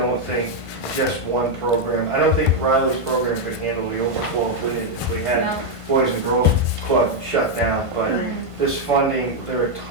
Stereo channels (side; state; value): left; late; 1.5 ms